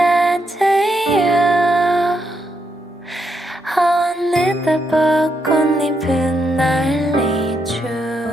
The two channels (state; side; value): normal; both; correlation 0.80